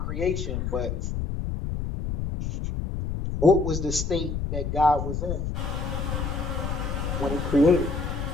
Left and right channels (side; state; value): left; noise; rumble, 3 dB below the sound